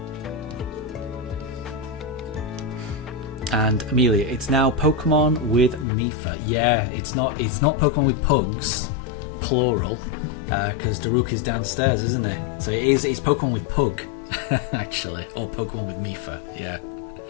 And Amelia, it's now Pokemon with Mifa. Yeah, it's not Pokemon with Pugs, plural. Because Daruk is downstairs, isn't it? So it's Pokemon with Pug, actually, or Pokemon with Mifa. Yeah,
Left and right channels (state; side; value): drops out; right; at 5.9 s